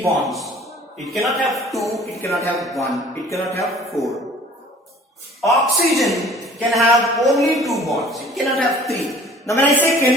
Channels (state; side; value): normal; both; correlation 0.50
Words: bonds. It cannot have 2, it cannot have 1, it cannot have 4. Oxygen can have only 2 bonds. It cannot have 3. Now when I say